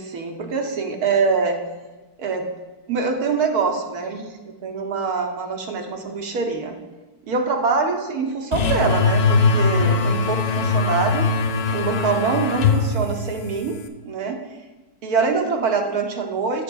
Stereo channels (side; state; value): left; late; 4.5 ms